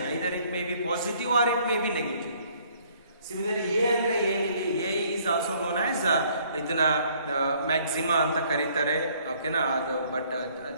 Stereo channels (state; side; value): inverted; both; correlation -0.62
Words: Either it may be positive or it may be negative. Similarly A ಅಂದರೆ ಏನಿಲ್ಲಿ, A is also known as ಇದನ್ನ ಮ್ಯಾಕ್ಸಿಮಾ ಅಂತ ಕರೀತಾರೆ, ಓಕೆನಾ. ಅದು ಬಟ್